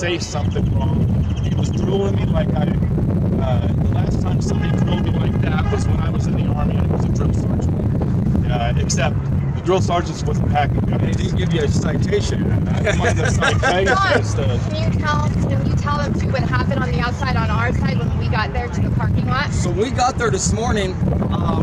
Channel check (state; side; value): identical; both; correlation 1.00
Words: something wrong. He was drooling me like the last time somebody drilled me like that was when I was in the Army, and it was a drill sergeant. Except the drill sergeants wasn't packing guns. They didn't give you a citation. I didn't mind the citation. Can you tell them too what happened on the outside on our side when we got there to the parking lot? So we got there this morning,